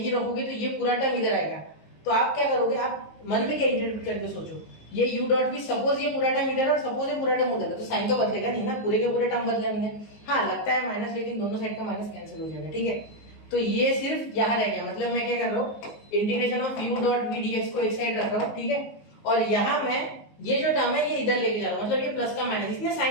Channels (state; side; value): late; right; 19 ms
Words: रखोगे तो ये पूरा टर्म इधर आएगा। तो आप क्या करोगे, आप मन में क्या इंटरप्रेट करके सोचो, ये u डॉट वी, सपोज ये पूरा टर्म इधर और सपोज ये पूरा टर्म उधर है, तो साइन तो बदलेगा नहीं ना, पूरे के पूरे टर्म बदले होंगे। हाँ लगता है माइनस, लेकिन दोनों साइड का माइनस कैंसिल हो जाएगा, ठीक है। तो ये सिर्फ यहाँ रह गया, मतलब मैं क्या कर रहा हूँ, integration of u dot v d x को एक साइड रख रहा हूँ, ठीक है। और यहाँ मैं ये जो टर्म है ये इधर लेके जा रहा हूँ, मतलब ये प्लस का माइनस, इसने